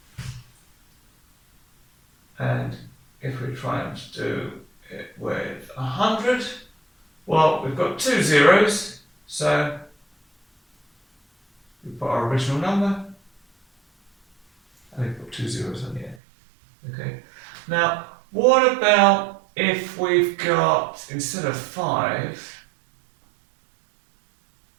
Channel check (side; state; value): left; drops out; at 16.2 s